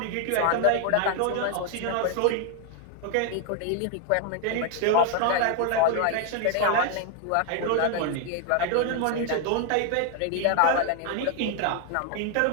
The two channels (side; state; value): both; different; correlation 0.00